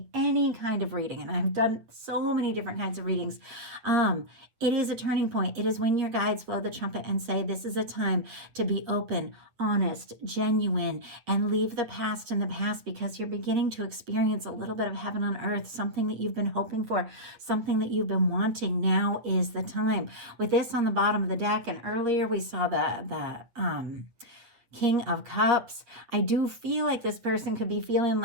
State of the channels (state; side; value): late; left; 8.4 ms